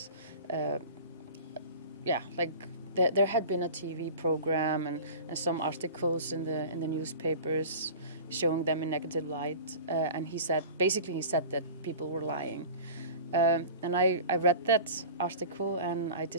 there had been a TV program and some articles in the newspapers showing them in negative light, and he said that people were lying. And I read that article and I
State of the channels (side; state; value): both; inverted; correlation -0.37